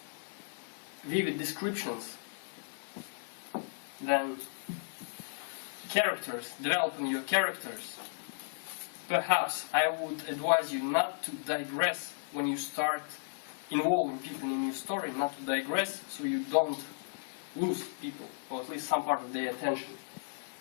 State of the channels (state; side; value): silent; right; digital silence